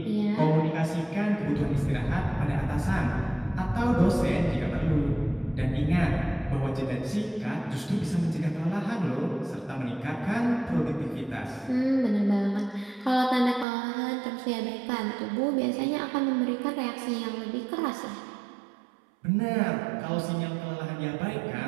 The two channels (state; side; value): drops out; left; at 13.7 s